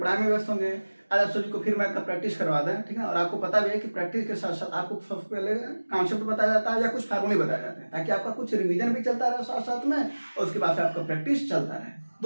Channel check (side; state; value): both; inverted; correlation -1.00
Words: में व्यस्त होंगे। आज आप सभी को फिर मैथ का प्रैक्टिस करवा दें, ठीक है। और आपको पता भी है कि प्रैक्टिस के साथ साथ आपको सबसे पहले कॉन्सेप्ट बताया जाता है या कुछ फार्मूले बताए जाते हैं, ताकि आपका कुछ रिवीजन भी चलता रहे साथ साथ में, और उसके बाद से आपका प्रैक्टिस चलता रहे,